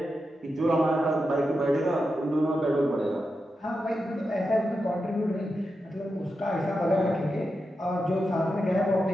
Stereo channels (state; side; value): normal; both; correlation 0.89